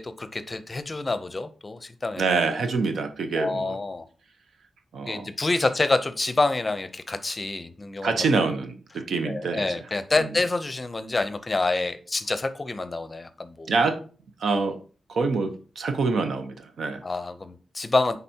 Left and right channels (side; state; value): both; normal; correlation 0.86